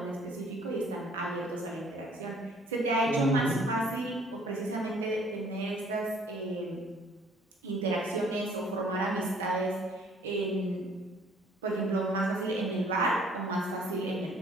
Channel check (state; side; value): normal; both; correlation 0.57